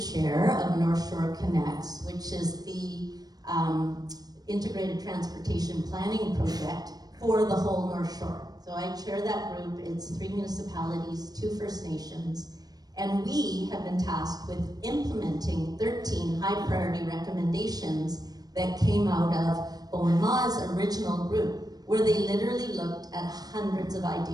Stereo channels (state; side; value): late; left; 0.19 ms